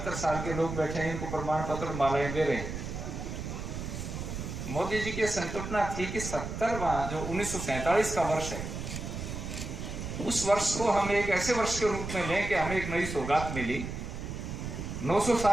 साल के लोग बैठे हैं, इनको प्रमाण पत्र मालाएं दे रहे हैं। मोदी जी की संकल्पना थी कि 70वां जो 1947 का वर्ष है, उस वर्ष को हम एक ऐसे वर्ष के रूप में लें कि हमें एक नई सौगात मिली। 900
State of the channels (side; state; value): right; noise; rumble, 6 dB below the sound